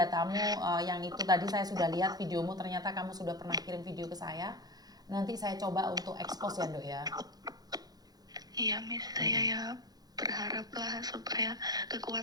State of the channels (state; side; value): late; left; 0.19 ms